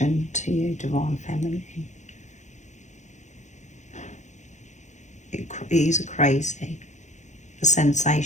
to you, Divine Feminine. It is crazy. the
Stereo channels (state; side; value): late; right; 0.34 ms